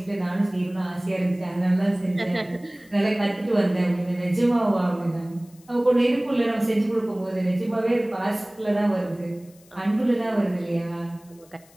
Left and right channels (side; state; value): left; noise; hiss, 28 dB below the sound